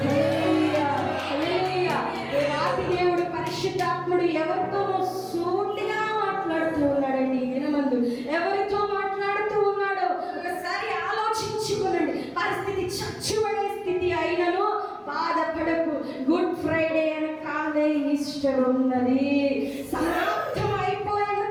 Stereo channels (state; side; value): identical; both; correlation 1.00